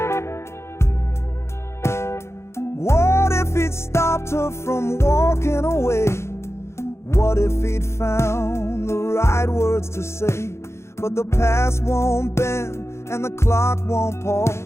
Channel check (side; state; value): right; late; 0.13 ms